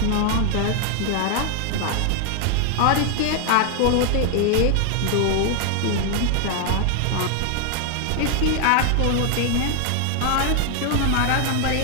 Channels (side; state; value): both; different; correlation 0.00